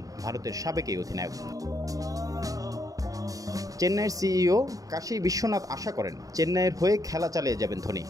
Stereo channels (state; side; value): late; left; 0.17 ms